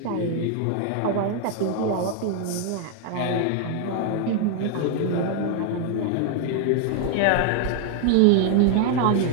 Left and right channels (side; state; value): both; different; correlation 0.00